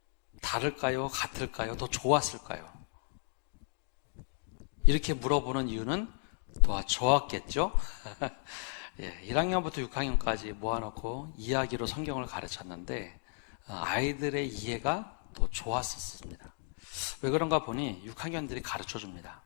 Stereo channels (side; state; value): right; silent; 55 dB below the other